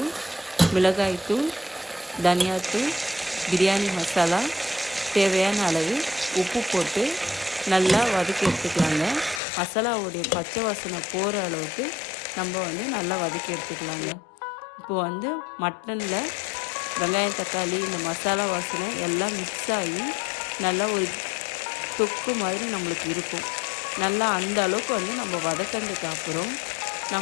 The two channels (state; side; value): drops out; right; at 9.4 s